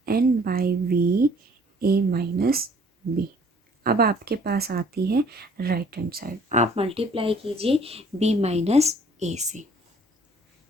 n by v a minus b. अब आपके पास आती है राइट हैंड साइड, आप मल्टीप्लाई कीजिए बी माइनस ए से,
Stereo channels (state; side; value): normal; both; correlation 0.56